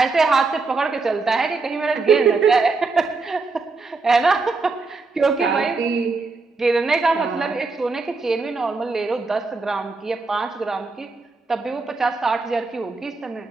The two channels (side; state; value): left; quieter; 4.0 dB